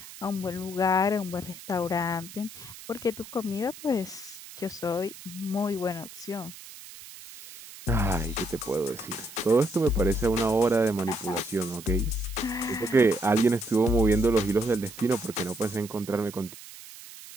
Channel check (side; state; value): right; noise; hiss, 16 dB below the sound